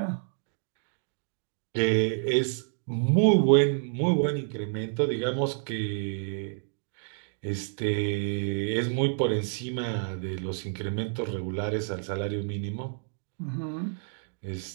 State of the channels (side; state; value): left; silent; digital silence